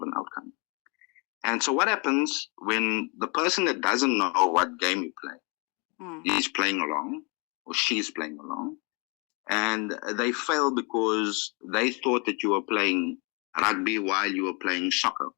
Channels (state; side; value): quieter; right; 32.6 dB